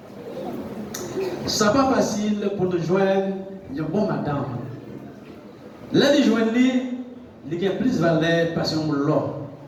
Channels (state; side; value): identical; both; correlation 1.00